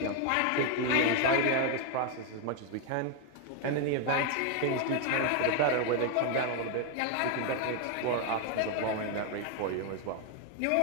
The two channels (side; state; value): both; different; correlation 0.01